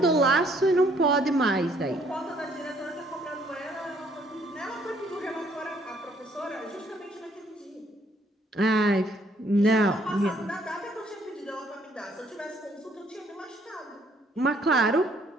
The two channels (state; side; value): normal; both; correlation 0.65